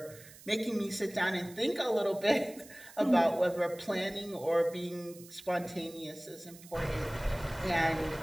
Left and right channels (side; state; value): right; noise; hiss, 19 dB below the sound